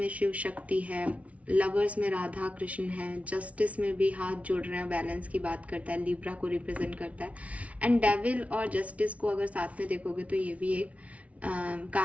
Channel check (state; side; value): late; left; 0.065 ms